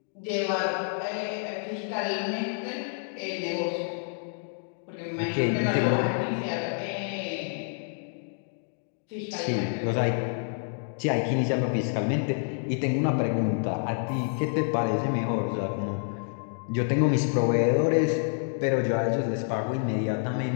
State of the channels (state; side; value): silent; right; 59 dB below the other